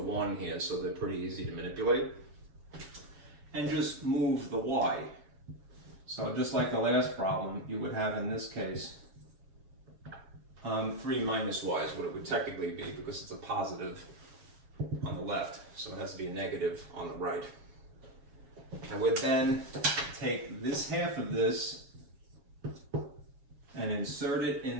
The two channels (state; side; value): late; left; 7.3 ms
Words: here, so they're pretty easy to manipulate. And just move the y. So just like the last problem, you would have in this case 3 minus y is what it would technically be, because it's a positive on the left, so it has to be a negative on the right. I would then take this half of this and insert it